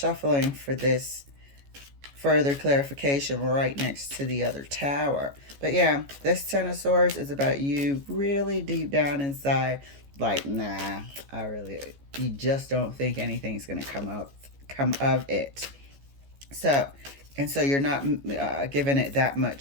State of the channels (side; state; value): left; late; 14 ms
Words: for this further clarification right next to the other tower. But yeah, this Ten of Swords is about you really deep down inside, like, nah, you just don't think anything's going to come of it. So you're not giving it that